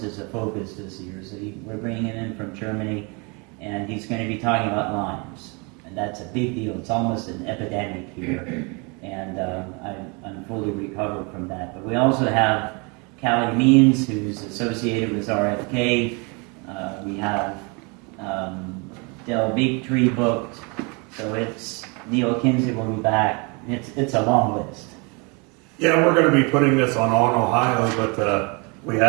is a focus this year, so we're bringing him in from Germany, and he's going to be talking about Lyme's. And that's a big deal. It's almost an epidemic here, and I'm fully recovered from that. But we also have Callie Means, who's associated with RFK. We have Del Bigtree booked, so it's Neil Kinsey will be back. It's a long list. Yeah, we're going to be putting this on Allen, Ohio, but we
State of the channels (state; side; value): quieter; left; 31.1 dB